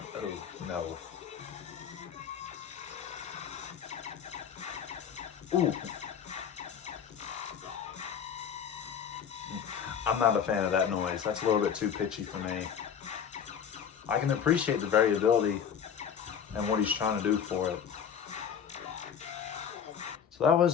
oh, no. Ooh. I'm not a fan of that noise. That's a little bit too pitchy for me. I can appreciate the variability and what he's trying to do for it. So that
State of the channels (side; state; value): right; quieter; 7.8 dB